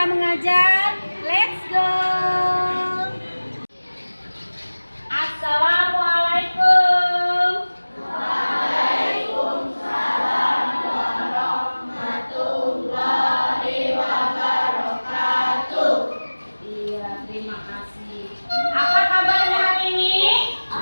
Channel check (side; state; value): both; inverted; correlation -1.00